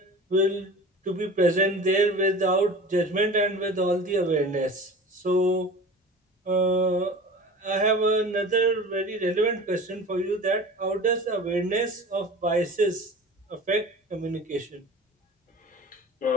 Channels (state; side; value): normal; both; correlation 0.38